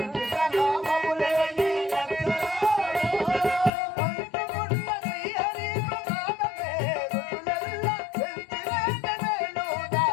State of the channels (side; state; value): right; drops out; at 3.7 s